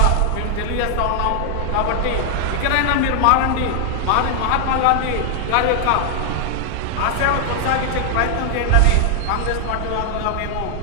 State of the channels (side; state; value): both; different; correlation 0.00